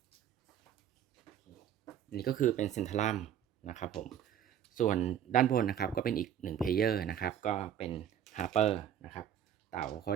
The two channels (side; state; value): left; quieter; 9.8 dB